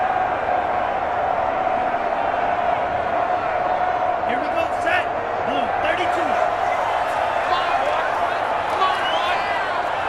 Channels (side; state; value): both; identical; correlation 1.00